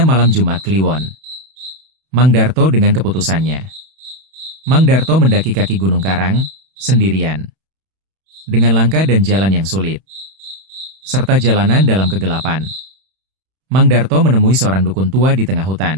malam Jumat Kliwon, Mang Darto dengan keputusannya. Mang Darto mendaki kaki Gunung Karang, sendirian. Dengan langkah dan jalan yang sulit. Serta jalanan dalam kegelapan. Mang Darto menemui seorang dukun tua di tengah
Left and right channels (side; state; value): left; late; 31 ms